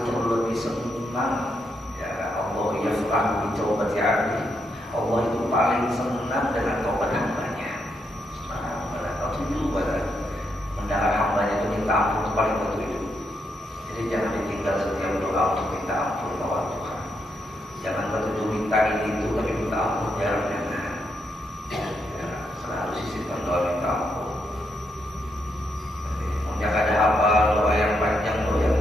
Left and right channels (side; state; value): both; normal; correlation 0.80